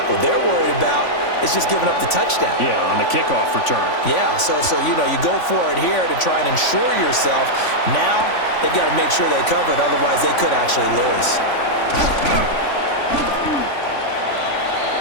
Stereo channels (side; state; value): right; late; 3.5 ms